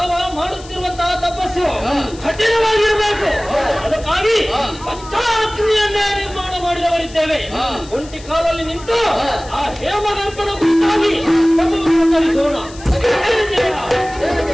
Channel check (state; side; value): noise; left; hiss, 20 dB below the sound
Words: ಮಾಡುತ್ತಿರುವಂತಹ ತಪಸ್ಸು ಕಠಿಣವಾಗಿರಬೇಕು. ಅದಕ್ಕಾಗಿ ಪಂಚಾಗ್ನಿಯನ್ನೇ ನಿರ್ಮಾಣ ಮಾಡಿದವರಿದ್ದೇವೆ. ಒಂಟಿ ಕಾಲಲ್ಲಿ ನಿಂತು ಆ ಹೇಮಗರ್ಭನ ಕುರಿತಾಗಿ ತಪಸ್ಸನ್ನು ತರಿಸೋಣ.